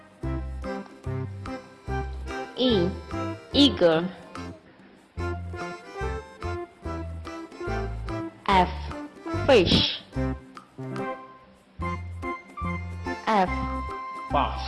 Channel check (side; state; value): both; identical; correlation 1.00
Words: E. Eagle. F. Fish. F.